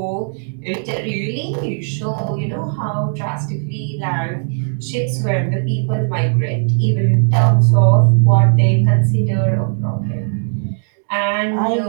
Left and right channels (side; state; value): left; silent; digital silence